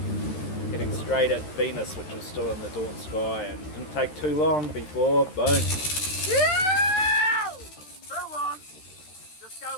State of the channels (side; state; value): right; late; 13 ms